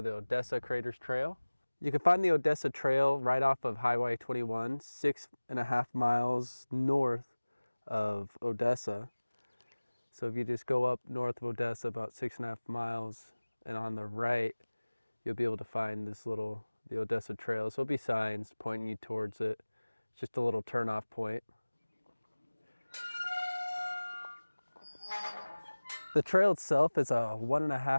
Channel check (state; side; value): inverted; both; correlation -1.00